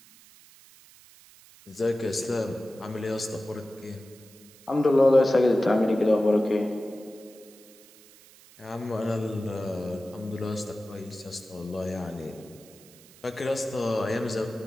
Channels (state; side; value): noise; right; hiss, 24 dB below the sound